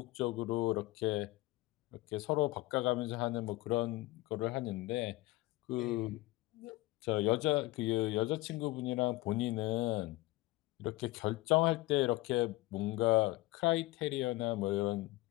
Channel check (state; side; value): quieter; right; 19.9 dB